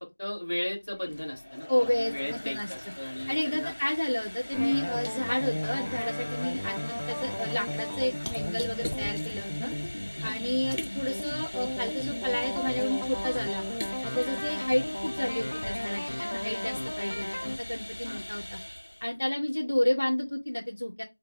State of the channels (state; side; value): inverted; both; correlation -1.00